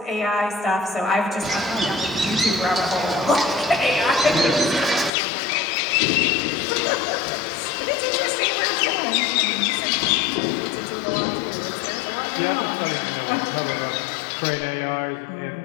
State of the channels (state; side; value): drops out; right; at 5.1 s